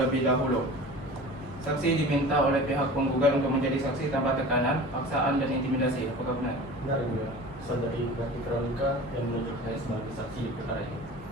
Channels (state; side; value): normal; both; correlation 0.38